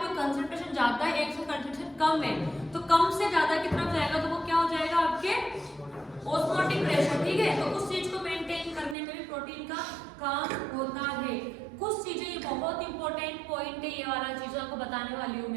कंसंट्रेशन ज्यादा है, एक से कंसंट्रेशन कम है, तो कम से ज्यादा की तरफ जाएगा, तो वो क्या हो जाएगा? आपके ऑस्मोटिक प्रेशर, ठीक है। तो उस चीज को मेंटेन करने में भी प्रोटीन का काम होता है। कुछ चीजें, ये बहुत इंपॉर्टेंट पॉइंट है, ये वाला चीज आपको बताने वाली हूँ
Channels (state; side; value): drops out; left; at 9.0 s